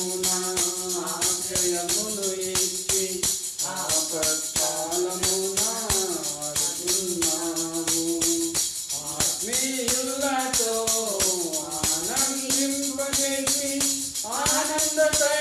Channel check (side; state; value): both; identical; correlation 1.00